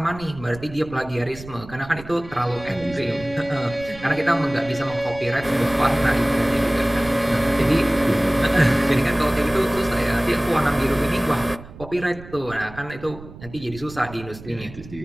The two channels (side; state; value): right; noise; rumble, 16 dB below the sound